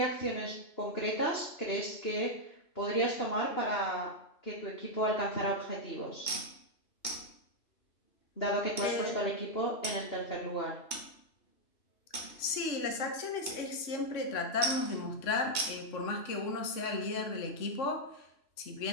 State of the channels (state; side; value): late; right; 3.0 ms